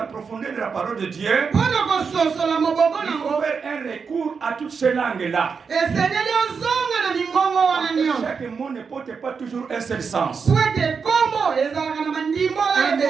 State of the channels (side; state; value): left; quieter; 5.7 dB